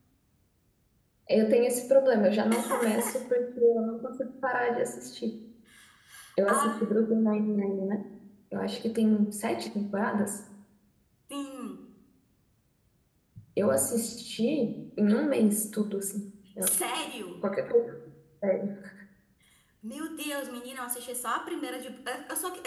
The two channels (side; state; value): both; identical; correlation 1.00